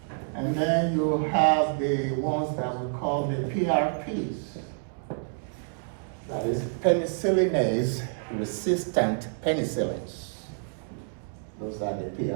And then you have the ones that we call the PRPs. That is penicillinase resistant penicillins. Those are the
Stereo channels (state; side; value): silent; left; digital silence